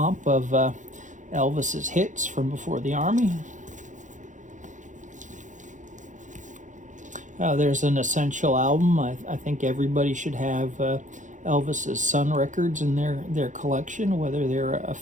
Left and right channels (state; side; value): late; left; 0.36 ms